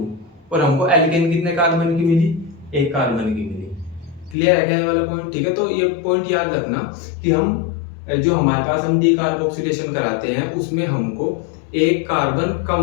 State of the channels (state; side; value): drops out; right; at 4.4 s